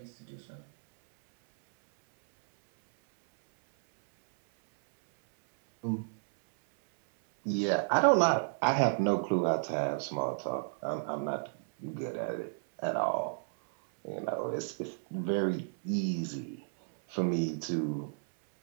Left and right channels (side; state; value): left; silent; 57 dB below the other